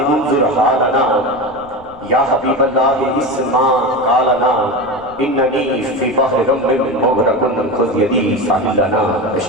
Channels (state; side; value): noise; left; rumble, 24 dB below the sound